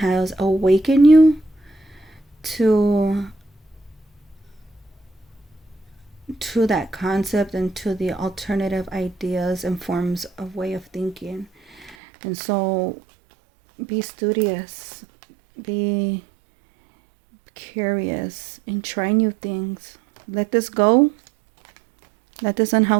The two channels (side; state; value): left; drops out; at 12.0 s